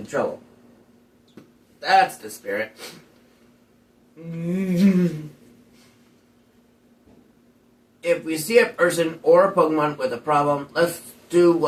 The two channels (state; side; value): identical; both; correlation 1.00